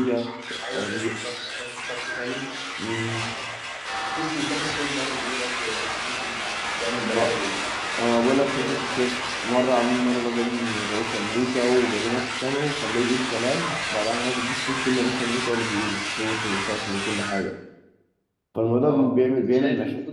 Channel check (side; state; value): both; identical; correlation 1.00